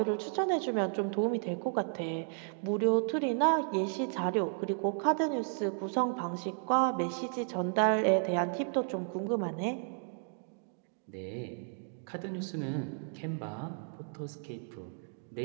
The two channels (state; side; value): silent; left; 56 dB below the other